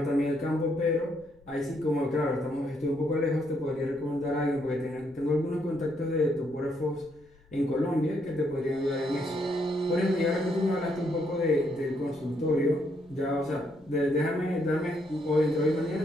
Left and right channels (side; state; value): left; noise; rumble, 29 dB below the sound